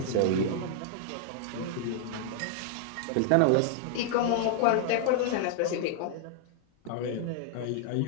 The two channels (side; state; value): both; different; correlation 0.00